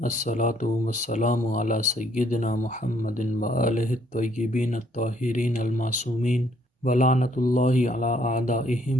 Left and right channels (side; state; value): both; normal; correlation 0.67